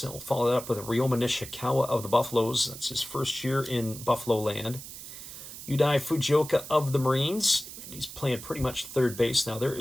And we'll follow that up with Ryoma Nishikawa of the Buffaloes. That's his first year in Buffalo land. Yudai Fujioka of the Marines. He's playing pretty much third base now. There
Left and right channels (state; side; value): noise; right; hiss, 12 dB below the sound